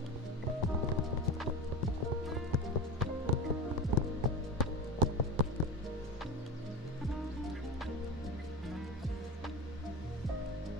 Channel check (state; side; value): normal; both; correlation 0.28